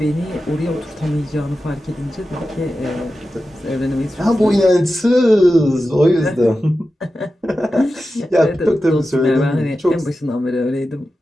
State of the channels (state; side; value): normal; both; correlation 0.92